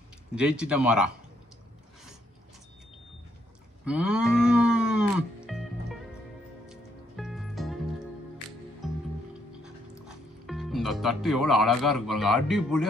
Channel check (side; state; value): both; normal; correlation 0.72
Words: ஜெயிச்சிட்ட மாறா. இந்த தட்டு எவ்வளோ அழகா இருக்கு பாருங்க.